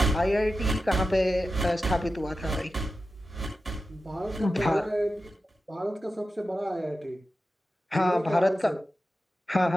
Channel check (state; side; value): normal; both; correlation 0.92